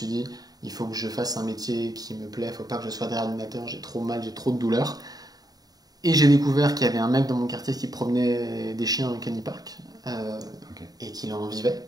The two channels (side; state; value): left; late; 0.18 ms